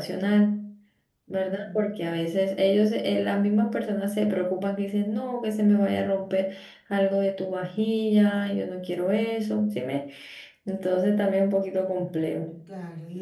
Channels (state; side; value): identical; both; correlation 1.00